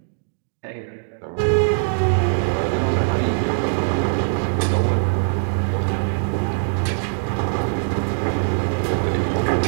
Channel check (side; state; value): left; silent; digital silence